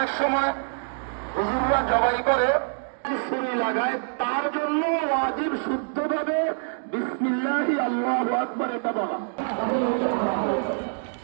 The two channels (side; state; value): left; silent; digital silence